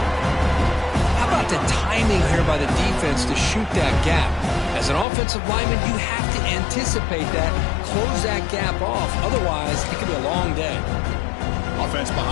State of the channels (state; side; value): drops out; right; at 5.1 s